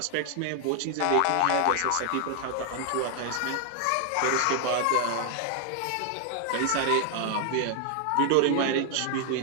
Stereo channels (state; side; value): different; both; correlation 0.00